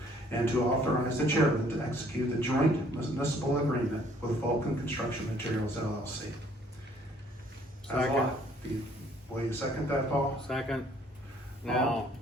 And to authorize the chairman to execute the joint municipal agreement with Vulcan Construction Materials LLC. Second. Will you second that, Paul? second. Now,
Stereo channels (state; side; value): normal; both; correlation 0.61